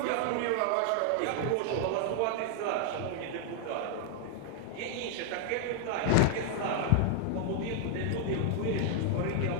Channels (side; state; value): both; different; correlation 0.00